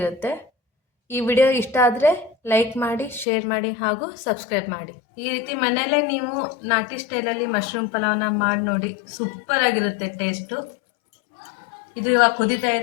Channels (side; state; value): right; drops out; at 3.2 s